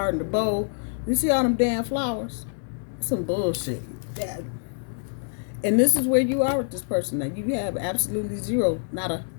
and the bow. You see all them damn flowers? Some bullshit. That. And this is where you are with this person. Now, you have absolutely zero, not a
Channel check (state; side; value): silent; right; digital silence